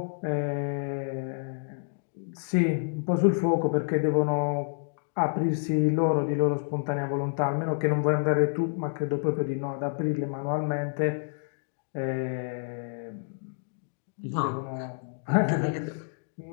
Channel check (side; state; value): right; silent; digital silence